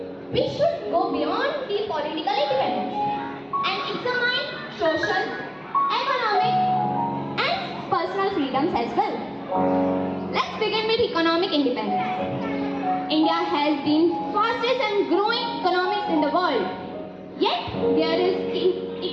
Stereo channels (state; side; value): identical; both; correlation 1.00